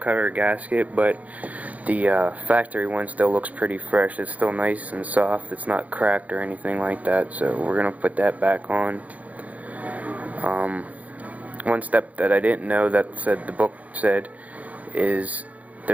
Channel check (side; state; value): left; late; 0.072 ms